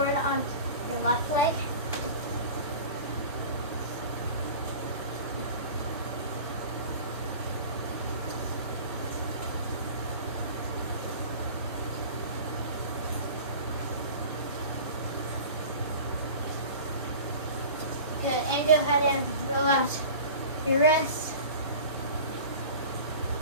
on your left leg. Good, and go ahead and relax your wrists.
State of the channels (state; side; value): inverted; both; correlation -0.38